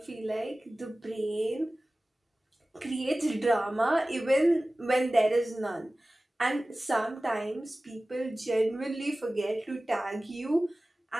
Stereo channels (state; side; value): normal; both; correlation 0.97